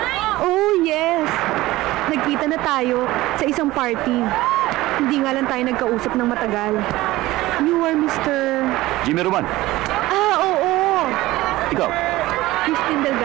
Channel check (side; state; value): left; quieter; 17.9 dB